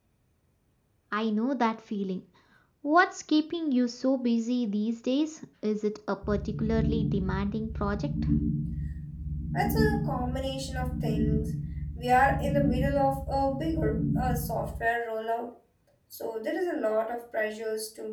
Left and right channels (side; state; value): both; identical; correlation 1.00